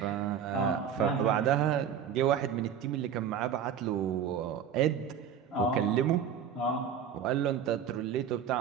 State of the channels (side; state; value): left; quieter; 8.0 dB